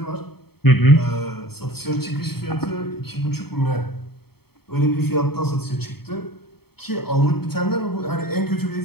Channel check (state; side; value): late; right; 0.96 ms